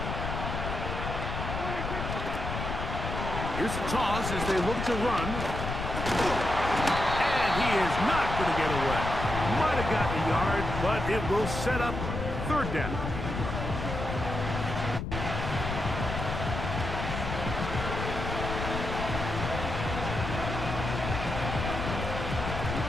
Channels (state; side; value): noise; left; rumble, 4 dB below the sound